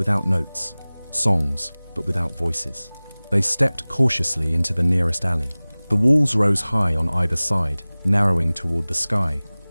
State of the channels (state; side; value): inverted; both; correlation -1.00